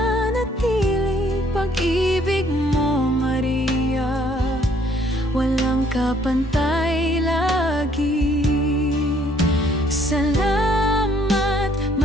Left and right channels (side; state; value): both; normal; correlation 0.63